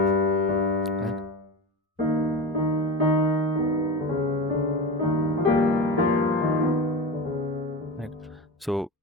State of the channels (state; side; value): normal; both; correlation 0.25